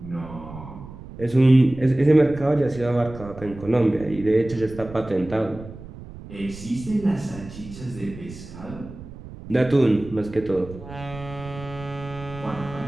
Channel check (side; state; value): right; noise; rumble, 15 dB below the sound